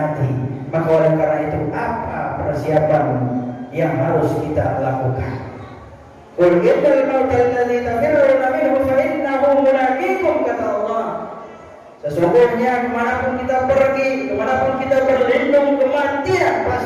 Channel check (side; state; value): both; identical; correlation 1.00